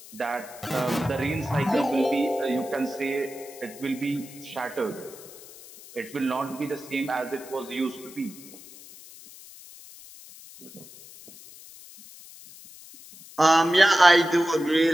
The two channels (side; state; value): left; noise; hiss, 18 dB below the sound